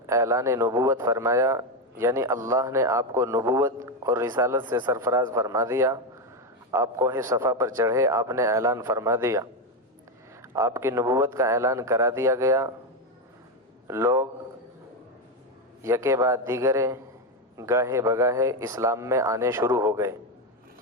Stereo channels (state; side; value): normal; both; correlation 0.09